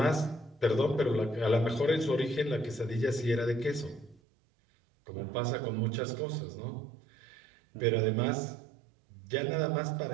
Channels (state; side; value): drops out; left; at 4.2 s